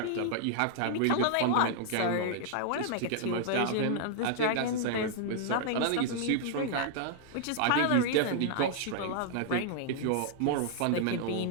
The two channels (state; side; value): different; both; correlation -0.01